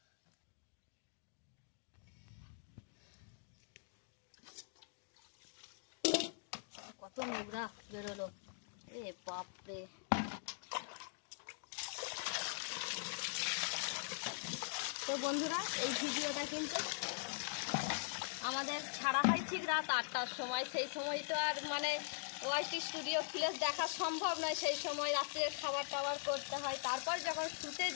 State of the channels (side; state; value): right; silent; digital silence